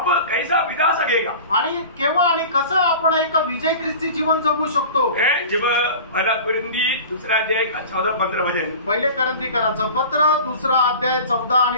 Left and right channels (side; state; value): both; inverted; correlation -0.37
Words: कैसा बिता सकेगा, आणि केव्हा आणि कसं आपण एक विजय ख्रिस्ती जीवन जगू शकतो? जब पहला कुरिन्थी 2 अध्याय का 14-15 वचन, पहिले करंथीकराचं पत्र 2 अध्याय 14 आणि